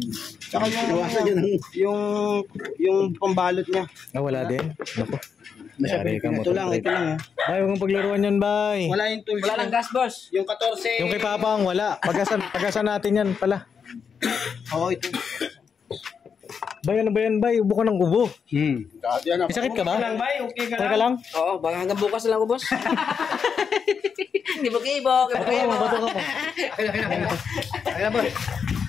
Tsaka yung pambalot niya. Ah, wala din. Naku. Yari ka, Ito Motor lang, Trade. ito lang. Bay, huwag mong paglaruan yan, bay. Wala yung tools. Wala lang gas, boss. Yung 14. Yung kay Papang, wala. Pagasan natin yan pala. Oo, ito. Bay, ano ba yan, bay? Ubo ka ng ubo. May sakit ka ba? Bay, okay ka Okay ka lang? Oo, baka hanggang bukas lang ako, boss. Gibo. Oo, bato ka pa. Kaya ba?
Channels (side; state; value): right; quieter; 6.4 dB